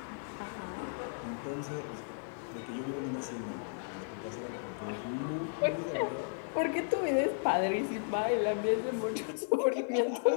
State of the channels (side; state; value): right; silent; 55 dB below the other